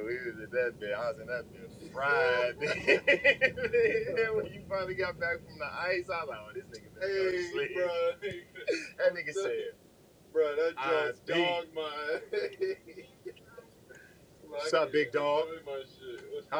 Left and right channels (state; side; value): identical; both; correlation 1.00